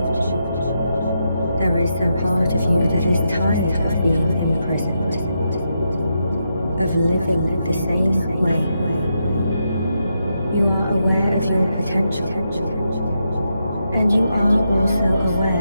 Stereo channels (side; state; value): both; inverted; correlation -0.83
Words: there is a part of you that is tired of being imprisoned, of living the same way. You are aware of your potential, and you are also